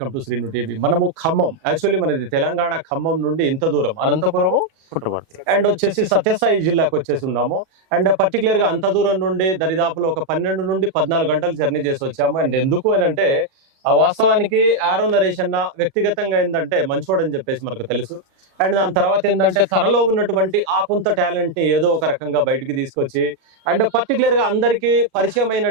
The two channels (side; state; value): left; late; 37 ms